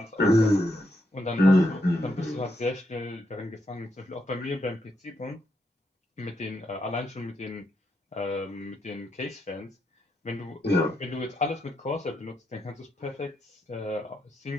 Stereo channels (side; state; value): both; normal; correlation 0.80